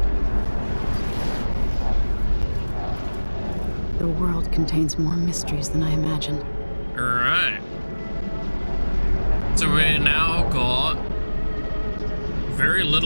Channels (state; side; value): inverted; both; correlation -1.00